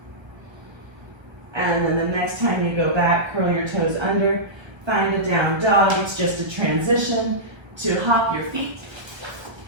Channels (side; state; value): left; late; 1.3 ms